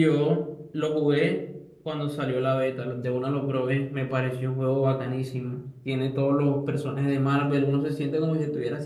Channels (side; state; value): both; identical; correlation 1.00